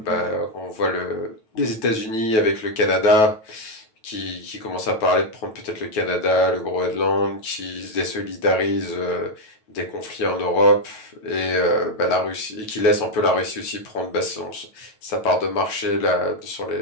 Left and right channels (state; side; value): late; right; 9.2 ms